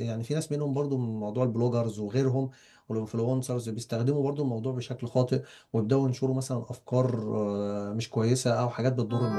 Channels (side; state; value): both; identical; correlation 1.00